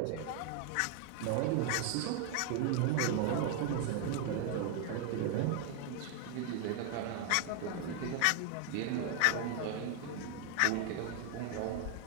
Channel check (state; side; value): different; both; correlation 0.00